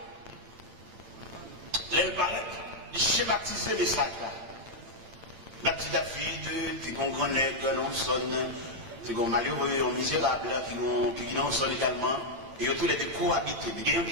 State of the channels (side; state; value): left; late; 8.9 ms